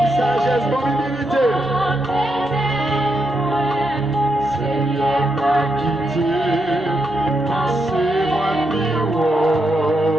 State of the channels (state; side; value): normal; both; correlation 0.82